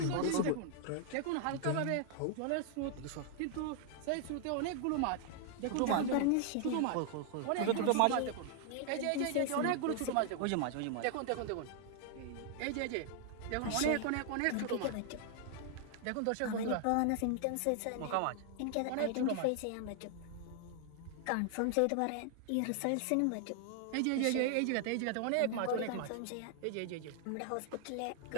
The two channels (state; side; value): different; both; correlation 0.00